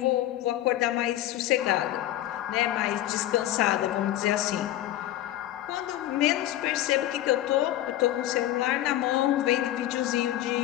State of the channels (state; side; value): quieter; right; 13.8 dB